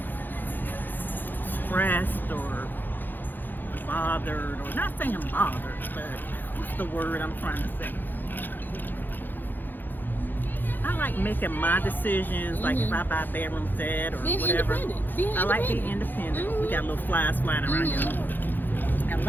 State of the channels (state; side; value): late; right; 0.090 ms